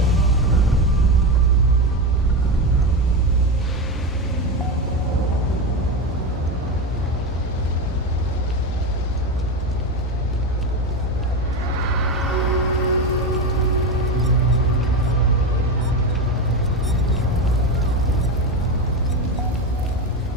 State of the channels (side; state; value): both; normal; correlation 0.17